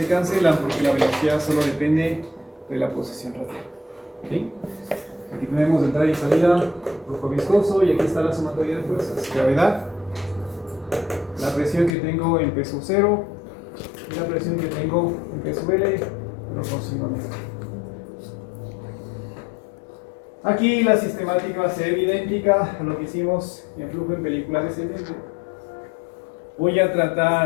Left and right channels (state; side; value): drops out; right; at 12.0 s